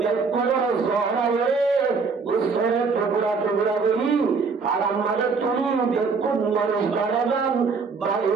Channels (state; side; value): quieter; left; 4.9 dB